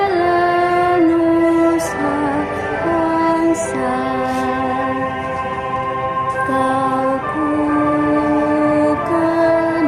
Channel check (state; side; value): identical; both; correlation 1.00